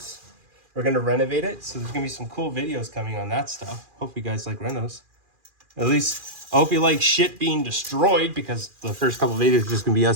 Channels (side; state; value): left; late; 2.4 ms